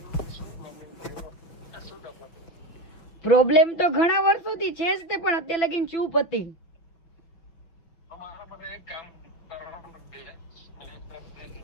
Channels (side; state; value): right; late; 6.0 ms